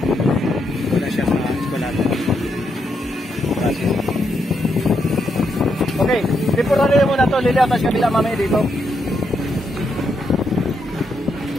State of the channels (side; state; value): both; normal; correlation 0.80